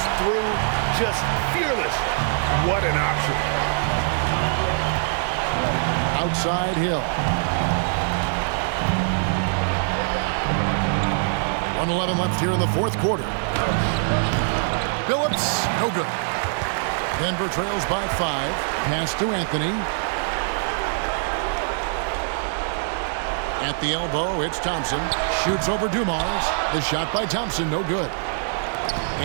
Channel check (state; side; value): silent; left; digital silence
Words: through just fearless. What an option. Outside Hill. 1:11 left here in the fourth quarter. Phillips, no good. Denver trails by 5. Pass to Anthony. At the elbow, it's Thompson. Shoots over Dumars. The shot by Thompson, no good.